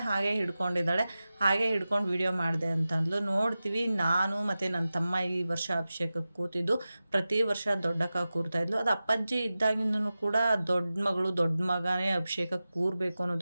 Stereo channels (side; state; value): both; inverted; correlation -0.95